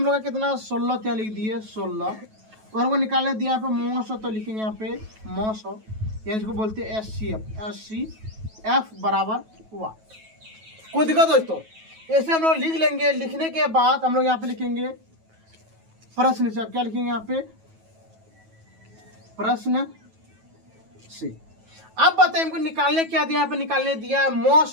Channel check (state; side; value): late; left; 9.2 ms